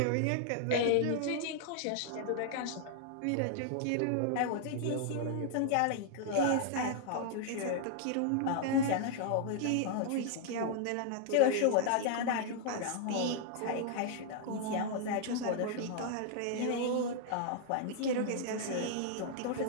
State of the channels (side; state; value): both; different; correlation -0.01